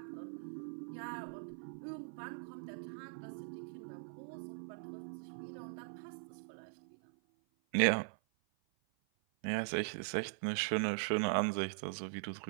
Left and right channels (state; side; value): silent; left; 50 dB below the other